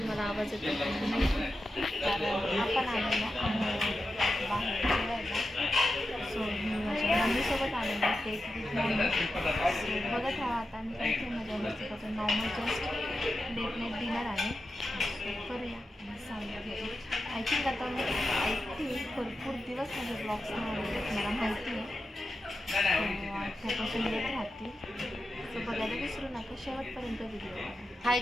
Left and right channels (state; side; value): normal; both; correlation 0.90